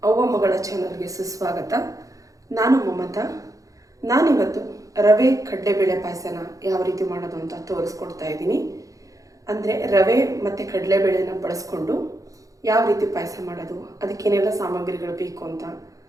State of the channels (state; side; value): late; left; 0.16 ms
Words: ಅವ್ವ ಮಗಳ ಚಾನಲ್ಗೆ ಸುಸ್ವಾಗತ. ನಾನು ಮಮತಾ. ನಾನಿವತ್ತು ರವೆ ಕಡಲೆಬೇಳೆ ಪಾಯಸನ ಯಾವ ರೀತಿ ಮಾಡೋದು ಅಂತ ತೋರಿಸ್ಕೊಡ್ತಾ ಇದ್ದೀನಿ. ಅಂದರೆ ರವೆ ಮತ್ತು ಕಡಲೆಬೇಳೆನ ಬಳಸ್ಕೊಂಡು ಯಾವ ರೀತಿ ಪಾಯಸ ಮಾಡೋದು, ಅದಕ್ಕೇನೆಲ್ಲ ಸಾಮಗ್ರಿಗಳು ಬೇಕು ಅಂತ